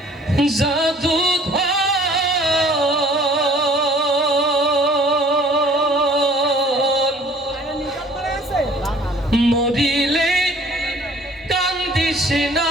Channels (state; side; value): normal; both; correlation 0.54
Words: জাদু মরিলে কান্দিস না